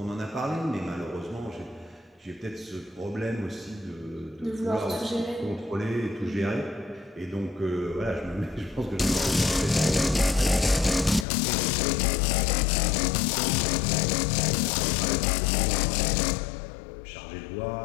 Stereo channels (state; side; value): drops out; right; at 11.2 s